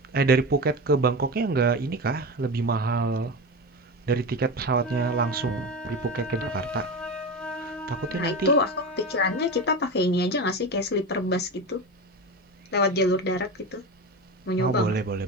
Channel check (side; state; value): both; normal; correlation 0.23